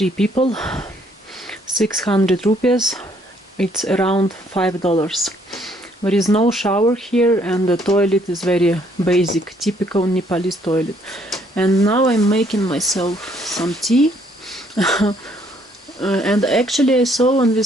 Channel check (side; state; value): both; normal; correlation 0.66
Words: people, 600 rupees. It's around $5. There is no shower here, and the toilet is very basic, typical Nepalese toilet. And now I'm making myself some tea. And actually I saw on